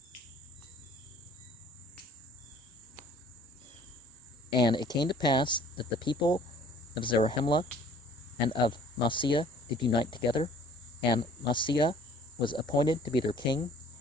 And it came to pass that the people of Zarahemla and of Masiah did unite together, and Masiah was appointed to be their king.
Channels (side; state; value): both; normal; correlation 0.54